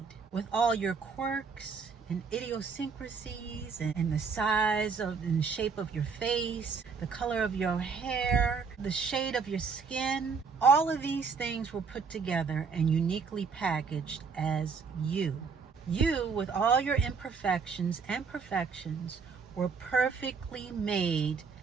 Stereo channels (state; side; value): quieter; left; 5.4 dB